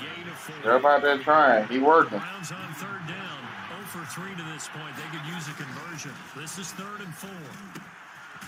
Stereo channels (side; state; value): both; identical; correlation 1.00